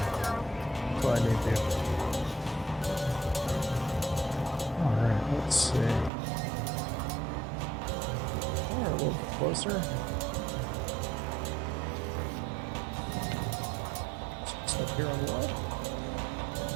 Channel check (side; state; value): left; drops out; at 6.1 s